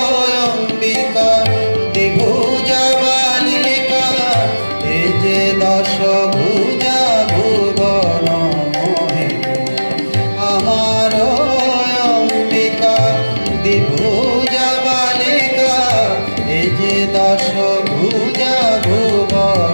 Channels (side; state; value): both; inverted; correlation -1.00